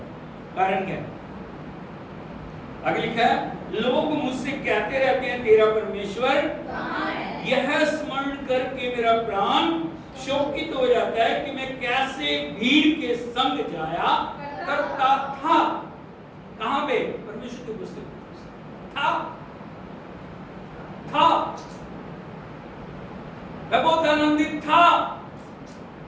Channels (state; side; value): identical; both; correlation 1.00